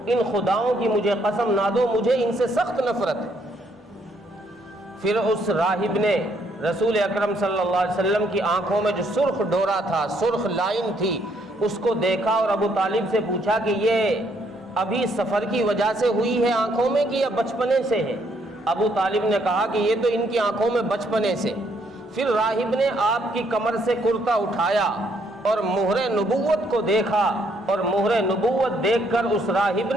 ان خداؤں کی مجھے قسم نہ دو، مجھے ان سے سخت نفرت ہے۔ پھر اس راہب نے رسول اکرم صلی اللہ علیہ وسلم کی آنکھوں میں جو سرخ ڈورا تھا، سرخ لائن تھی، اس کو دیکھا اور ابو طالب سے پوچھا کہ یہ ابھی سفر کی وجہ سے ہوئی ہے آنکھوں میں کہ یا بچپنے سے ہے؟ ابو طالب نے کہا کہ یہ تو ان کی آنکھوں میں بچپنے سے۔ پھر راہب نے آپ کی کمر سے کرتا اٹھایا اور مہر نبوت کو دیکھا، اور مہر نبوت دیکھ کر اس راہب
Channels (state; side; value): normal; both; correlation 0.70